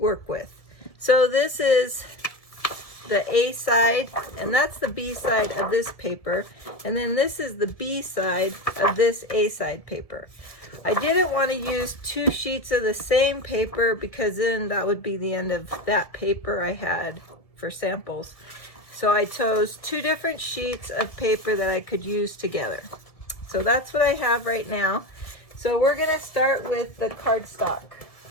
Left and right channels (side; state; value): right; late; 1.5 ms